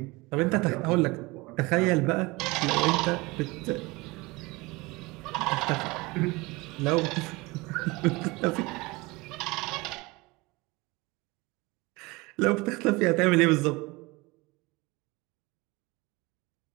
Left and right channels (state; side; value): quieter; left; 23.5 dB